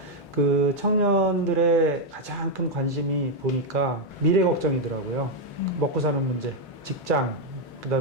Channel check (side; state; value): both; normal; correlation 0.01